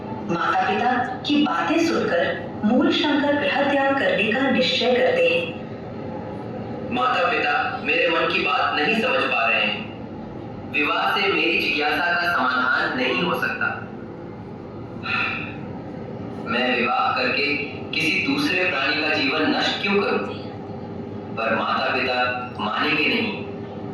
माता पिता की बातें सुनकर मूलशंकर गृह त्याग करने का निश्चय करते हैं। माता पिता मेरे मन की बात नहीं समझ पा रहे हैं। विवाह से मेरी जिज्ञासा का समाधान नहीं हो सकता। मैं विवाह करके किसी दूसरे प्राणी का जीवन नष्ट क्यों करूं? पर माता पिता मानेंगे नहीं।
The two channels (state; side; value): identical; both; correlation 1.00